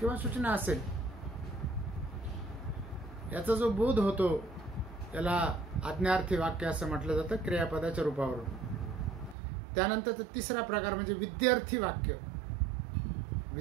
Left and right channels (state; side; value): drops out; left; at 9.3 s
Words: सूचना असेल, याचा जो बोध होतो त्याला आज्ञार्थी वाक्य असं म्हटलं जातं क्रियापदाच्या रूपावरून. त्यानंतर तिसरा प्रकार म्हणजे विद्यार्थी वाक्य.